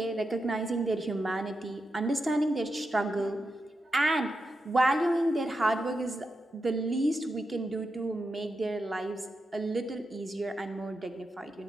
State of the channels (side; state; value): both; normal; correlation 0.87